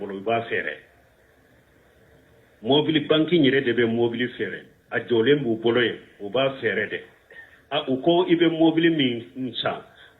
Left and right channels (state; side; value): identical; both; correlation 1.00